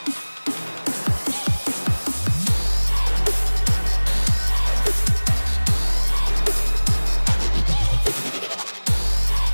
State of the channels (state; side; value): inverted; both; correlation -1.00